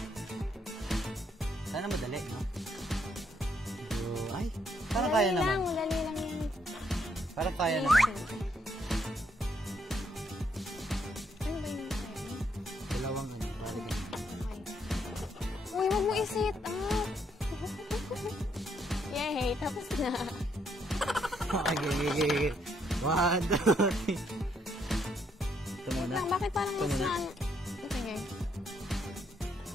Sana madali, no? So, ay, parang kaya naman. Madali lang yan. Parang kaya naman. Ano ba yung kaya? Dalawang ano, parang ganyan. Okay. Uy, wag mo i-sit up. Yay, tapos na. Okay. 1, 2, 3. Ito muna. Lang, bakit parang Ito mas muna. na ano? Sige.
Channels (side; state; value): both; normal; correlation 0.73